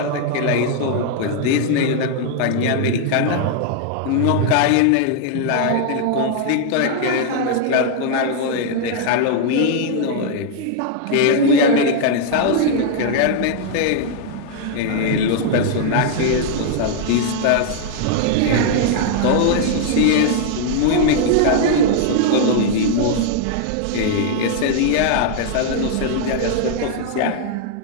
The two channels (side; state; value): both; different; correlation 0.00